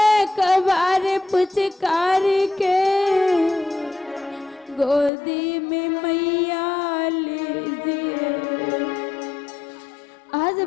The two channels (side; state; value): right; drops out; at 5.1 s